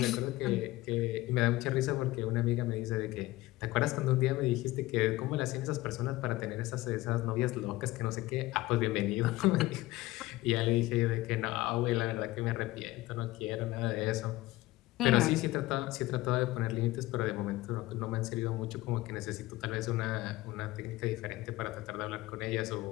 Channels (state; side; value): quieter; right; 18.4 dB